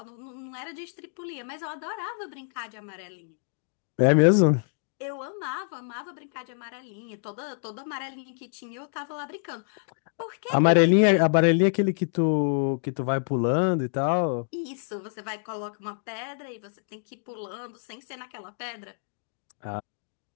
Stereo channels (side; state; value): right; silent; digital silence